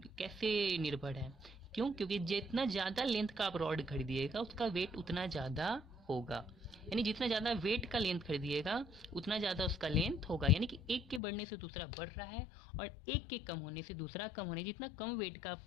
कैसे निर्भर है? क्यों? क्योंकि जितना ज़्यादा लेंथ का आप रॉड खरीदिएगा उसका वेट उतना ज़्यादा होगा। यानी जितना ज़्यादा वेट का लेंथ खरीदिएगा उतना ज़्यादा उसका लेंथ होगा। यानी कि एक के बढ़ने से दूसरा बढ़ रहा है और एक के कम होने से दूसरा कम होने। जितना कम वेट का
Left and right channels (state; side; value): drops out; right; at 11.2 s